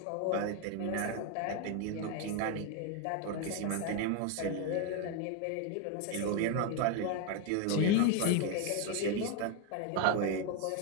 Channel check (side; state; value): both; different; correlation 0.01